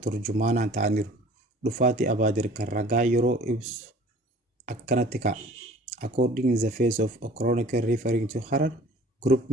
ta'aniiru. Dhufaatii Abaadir kan ragaa yeroo ibsu akkanatti ka'a. According to the face of a chronicle referring to Harar, group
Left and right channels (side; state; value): both; normal; correlation 0.48